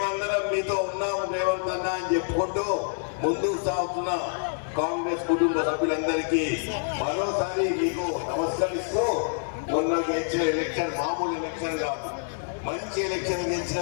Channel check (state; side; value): silent; right; 60 dB below the other